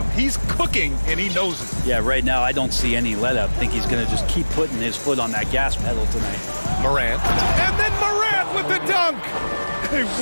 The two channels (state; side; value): inverted; both; correlation -1.00